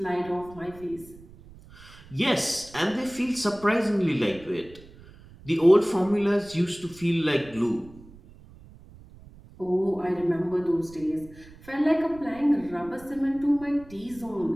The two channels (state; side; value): noise; right; rumble, 21 dB below the sound